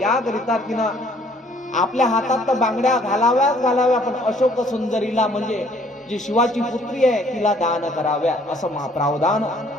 तिनं आपल्या हातात तर बांगड्या घालाव्या, पण अशोक सुंदरीला म्हणजे जी शिवाची पुत्री आहे तिला दान कराव्या, असं प्रावधान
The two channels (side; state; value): both; normal; correlation 0.60